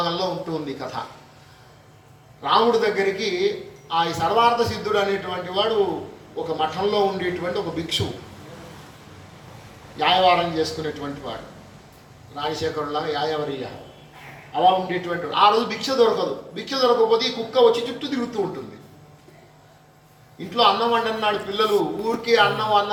ఉంటుంది ఈ కథ. రాముడి దగ్గరికి ఆ సర్వార్థ సిద్ధుడు అనేటువంటి వాడు ఒక మఠంలో ఉండేటువంటి ఒక భిక్షు, యాయవారం చేసుకునేటువంటి వాడు, రాజశేఖరులాగా యాయవరియ అలా ఉండేటువంటి వాడు. ఆ రోజు భిక్ష దొరకదు. భిక్ష దొరకకపోతే ఈ కుక్క వచ్చి చుట్టూ తిరుగుతూ ఉంటుంది. ఇంట్లో అన్నం వండన్నాడు, పిల్లలు ఊరికే అన్నం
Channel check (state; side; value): identical; both; correlation 1.00